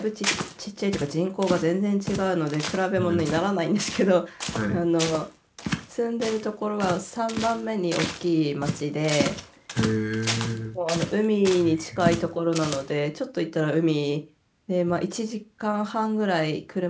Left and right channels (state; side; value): identical; both; correlation 1.00